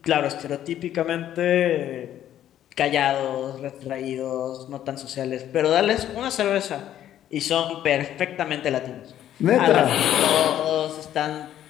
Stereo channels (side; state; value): right; quieter; 11.5 dB